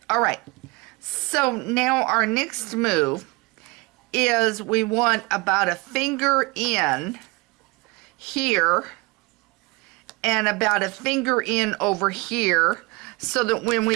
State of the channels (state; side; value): quieter; left; 25.7 dB